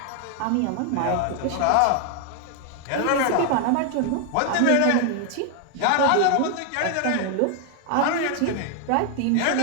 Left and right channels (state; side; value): different; both; correlation 0.00